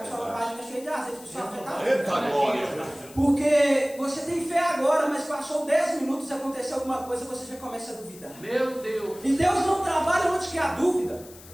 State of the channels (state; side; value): noise; left; hiss, 20 dB below the sound